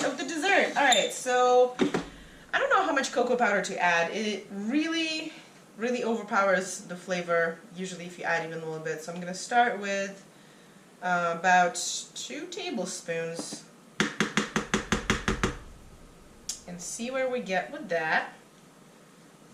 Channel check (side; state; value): both; identical; correlation 1.00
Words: of the dessert. Alright, so I don't know how much cocoa powder to add. It really overpowers the flavor, usually if you add even a little bit. So I'm going to start with about 2 tablespoons and see where we get with that.